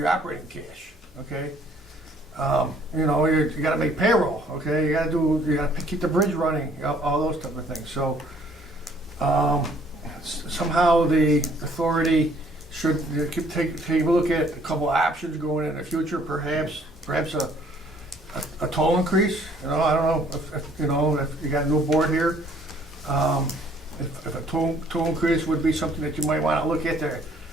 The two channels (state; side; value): normal; both; correlation 0.61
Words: operating cash. Okay, you got to make payroll. Okay, you got to keep the bridge running, all those type of things. So somehow the authority should take a look at a couple of options going in the future. Perhaps a toll increase. I don't know if you got a new board here. If a toll increase would be something that you might want to look at there